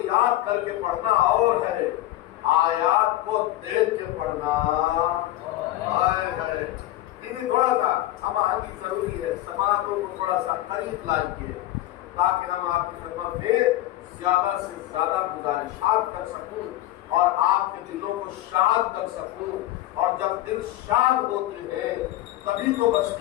یاد کر کے پڑھنا اور ہے، آیات کو دیکھ کے پڑھنا ہے۔ تھوڑا سا ہم آگے ضروری ہے، سماعتوں کو تھوڑا سا قریب لائیے تاکہ ہم آپ کی خدمت میں زیادہ سے زیادہ گزارشات کر سکوں اور آپ کے دلوں کو شاد کر سکوں. اور جب دل شاد ہوتے ہیں تبھی تو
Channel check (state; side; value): quieter; right; 15.4 dB